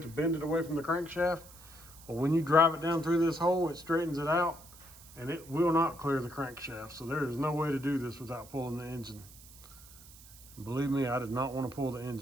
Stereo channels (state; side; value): noise; right; hiss, 20 dB below the sound